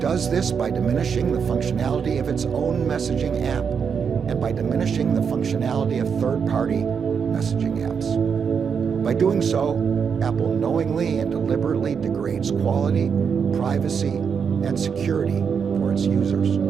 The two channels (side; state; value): left; quieter; 6.6 dB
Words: this by diminishing the functionality of its own messaging app and by diminishing the functionality of third-party messaging apps. By doing so, Apple knowingly and deliberately degrades quality, privacy, and security for its users.